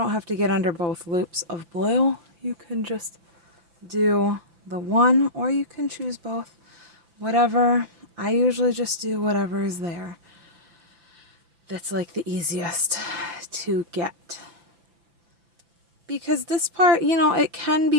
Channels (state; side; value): late; left; 6.0 ms